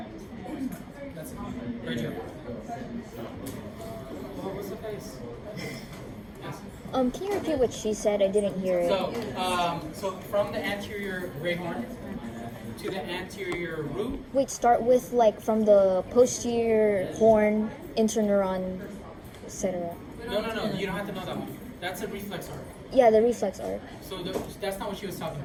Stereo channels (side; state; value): both; identical; correlation 1.00